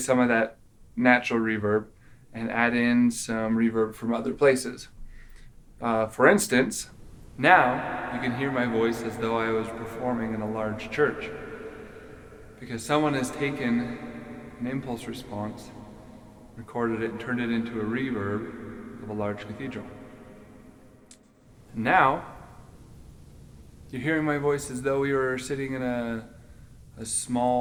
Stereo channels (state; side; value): identical; both; correlation 1.00